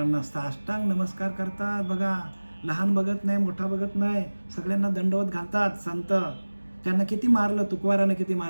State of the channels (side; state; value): both; inverted; correlation -1.00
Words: साष्टांग नमस्कार करतात. बघा, लहान बघत नाही, मोठा बघत नाही, सगळ्यांना दंडवत घालतात संत. त्यांना किती मारलं, तुकोबारानं किती